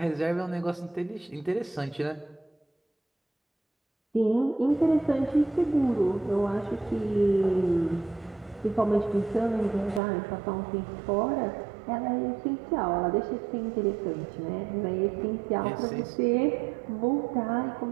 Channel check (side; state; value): left; drops out; at 10.0 s